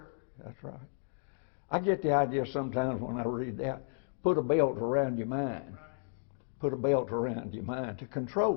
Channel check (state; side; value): silent; right; digital silence